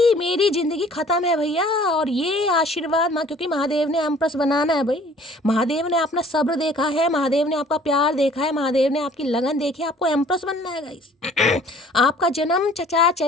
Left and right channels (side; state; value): both; normal; correlation 0.53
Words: मेरी ज़िंदगी ख़त्म है भैया और ये आशीर्वाद माँ, क्योंकि महादेव ने एम्प्रेस बनाना है भाई। महादेव ने अपना सब्र देखा है, महादेव ने आपका प्यार देखा है, महादेव ने आपकी लगन देखी है, आपको एम्प्रेस बनना है गाइस। आपका जन्म चचा